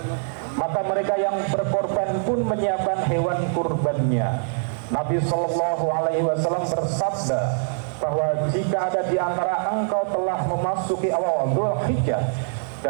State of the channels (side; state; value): left; silent; digital silence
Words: Maka mereka yang berkorban pun menyiapkan hewan kurbannya. Nabi Shallallahu Alaihi Wasallam bersabda bahwa jika ada di antara engkau telah memasuki awal Dzulhijjah